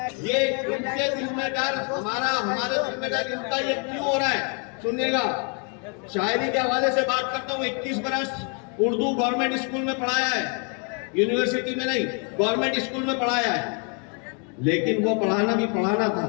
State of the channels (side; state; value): right; quieter; 37.9 dB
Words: ये इनके दिल में डर, हमारे दिल में डर, इनका ये क्यों हो रहा है सुनिएगा। शायरी के हवाले से बात करता हूँ। 21 बरस उर्दू गवर्नमेंट स्कूल में पढ़ाया है, यूनिवर्सिटी में नहीं, गवर्नमेंट स्कूल में पढ़ाया है। लेकिन वो पढ़ाना भी पढ़ाना था,